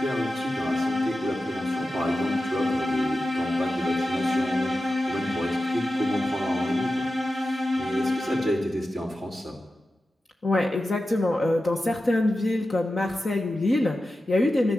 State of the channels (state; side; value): normal; both; correlation 0.93